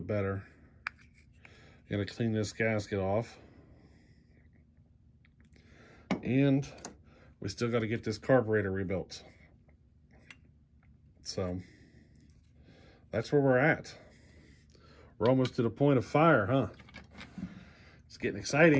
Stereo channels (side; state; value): both; identical; correlation 1.00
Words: better. Got to clean this gasket off. And we still got to get this carburetor rebuilt. So that's where we're at. We're almost to the point of fire, huh? It's getting